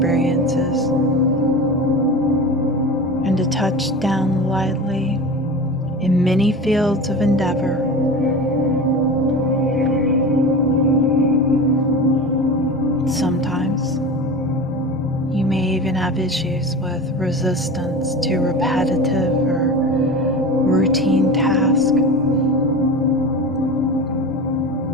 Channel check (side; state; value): both; normal; correlation 0.31